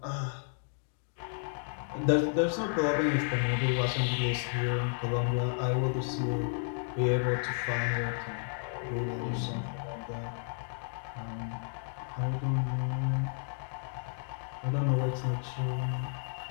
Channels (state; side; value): silent; right; digital silence